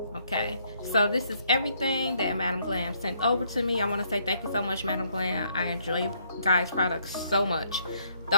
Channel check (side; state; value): both; inverted; correlation -0.69